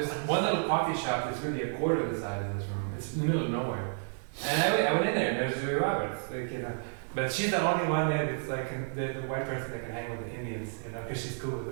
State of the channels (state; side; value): silent; left; 57 dB below the other